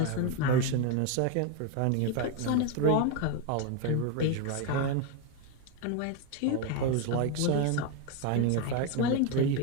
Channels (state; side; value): different; both; correlation 0.02